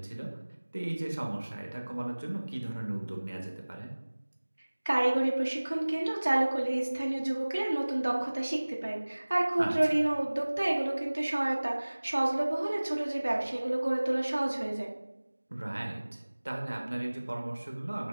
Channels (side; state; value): both; inverted; correlation -1.00